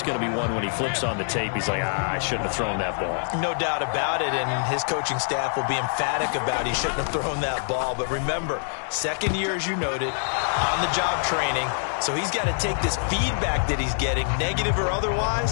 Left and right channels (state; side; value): silent; right; digital silence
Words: going to be one when he flips on the tape. He's like, I shouldn't have thrown that ball. No doubt about it, and his coaching staff will be emphatic about he shouldn't have thrown that ball. But remember, second year, as you noted, on-the-job training. So he's got to take this feedback that he's getting, negative or